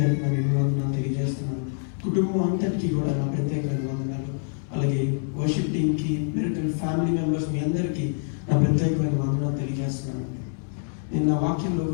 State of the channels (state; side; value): silent; right; 61 dB below the other